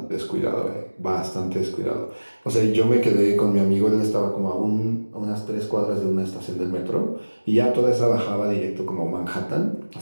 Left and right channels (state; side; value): inverted; both; correlation -1.00